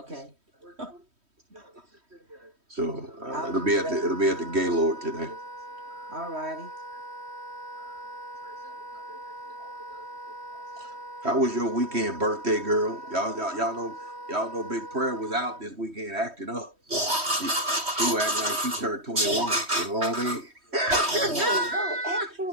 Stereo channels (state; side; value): late; left; 3.1 ms